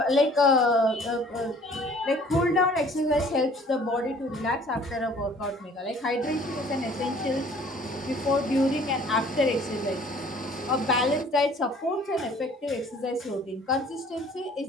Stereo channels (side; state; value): both; normal; correlation 0.53